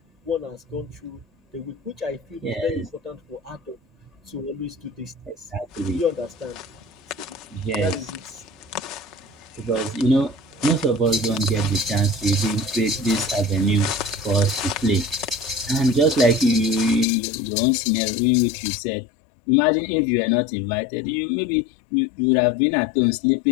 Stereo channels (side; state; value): right; drops out; at 17.1 s